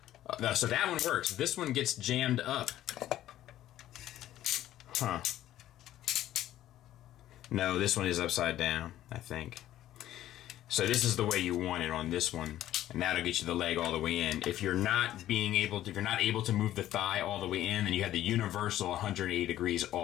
So that one works. This one gets jammed up. Huh. No, this one is upside down, I think. So this is the way you want it on this one, and that'll get you the leg all the way in. If you're not able to move the thigh all the way in, then you have the universal 180 degrees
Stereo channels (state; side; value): quieter; right; 13.2 dB